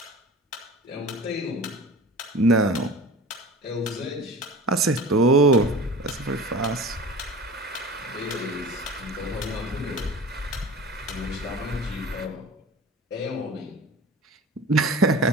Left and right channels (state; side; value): normal; both; correlation 0.37